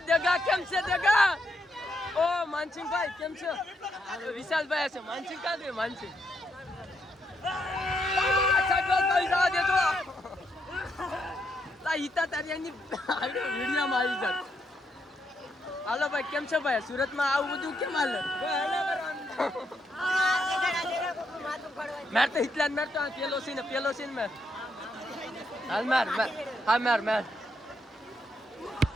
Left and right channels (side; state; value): both; normal; correlation 0.78